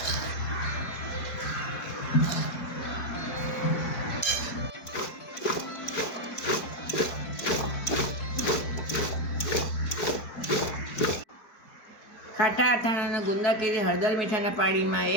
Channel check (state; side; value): late; right; 4.6 ms